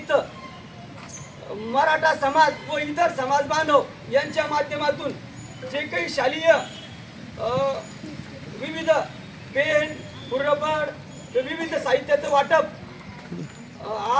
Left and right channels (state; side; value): identical; both; correlation 1.00